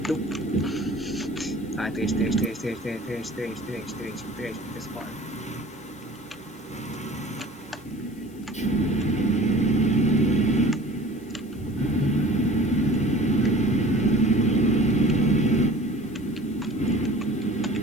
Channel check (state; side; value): noise; left; hiss, 26 dB below the sound